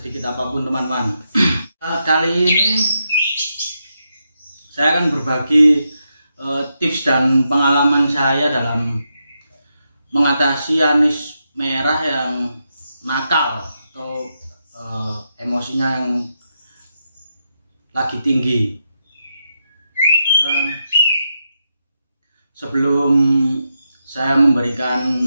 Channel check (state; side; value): inverted; both; correlation -0.84